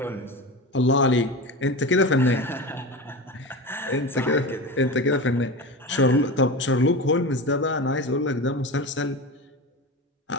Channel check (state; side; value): normal; both; correlation 0.26